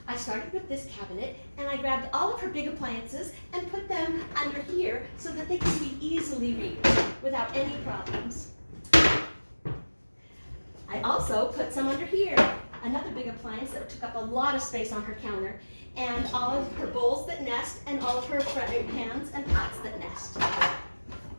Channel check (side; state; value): both; inverted; correlation -1.00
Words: I started with this cabinet and I grabbed all of her big appliances and put them under here so that they can be easily reached without any problems. I also put some under here, another big appliance that took up a lot of space on her counter, and all of her bowls that nest and all of her frying pans and pots that nest.